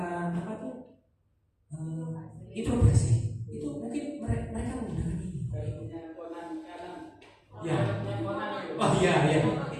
apa tuh introspeksi, itu mungkin mereka menggunakan ini. Ya. Oh iya.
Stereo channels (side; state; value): both; identical; correlation 1.00